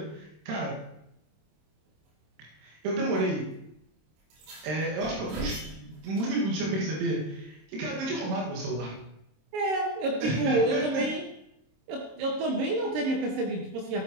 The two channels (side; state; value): left; late; 26 ms